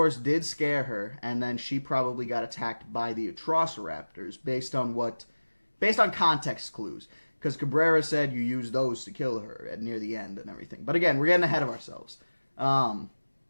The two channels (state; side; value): inverted; both; correlation -1.00